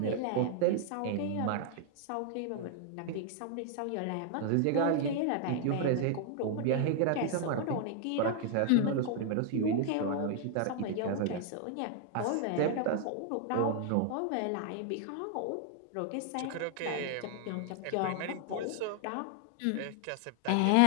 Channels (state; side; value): different; both; correlation 0.00